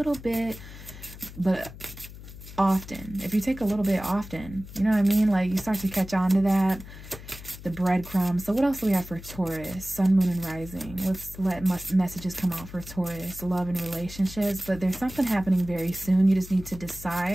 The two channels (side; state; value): left; noise; hum, 15 dB below the sound